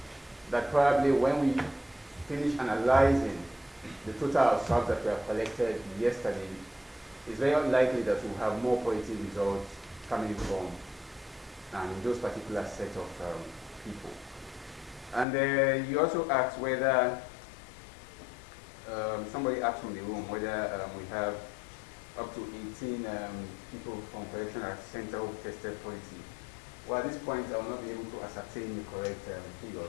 that probably when we finish analyzing the total of swabs that were collected yesterday, it's very likely that we'll have more positive results coming from those particular set of people. And you also asked whether, somebody asked from the room whether we have up to 18 people from correctional center who tested positive. Well, at this point, I will not be able to ascertain the correct figures.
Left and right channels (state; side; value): drops out; right; at 15.2 s